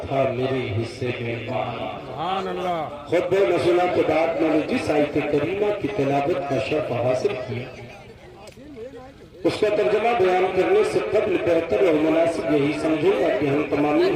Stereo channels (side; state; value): both; identical; correlation 1.00